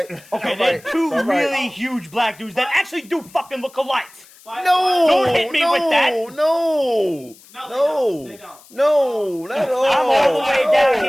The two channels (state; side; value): noise; left; hiss, 25 dB below the sound